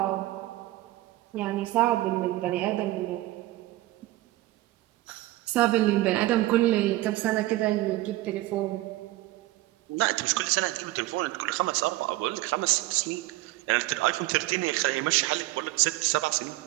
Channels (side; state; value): left; quieter; 17.6 dB